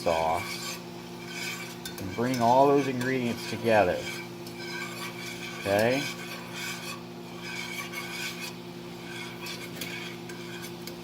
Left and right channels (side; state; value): both; identical; correlation 1.00